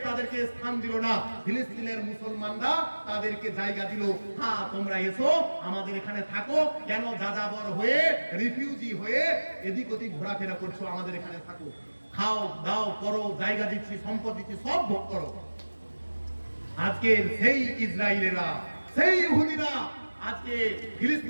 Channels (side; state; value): both; inverted; correlation -1.00